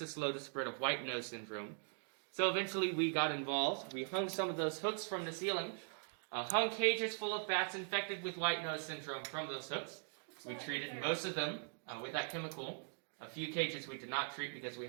slow the spread of white nose syndrome. So eventually we got involved. We hung some of those hooks from the ceiling, hung cages full of bats infected with white nose syndrome from those hooks. We treated most of them with that chemical. A few cages we did not treat because we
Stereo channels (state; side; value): silent; left; 50 dB below the other